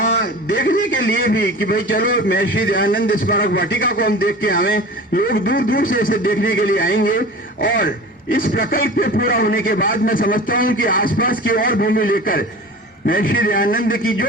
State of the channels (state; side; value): normal; both; correlation 0.37